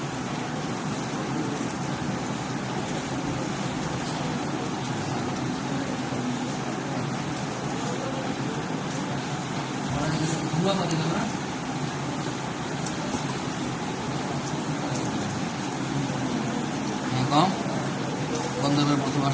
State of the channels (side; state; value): both; identical; correlation 1.00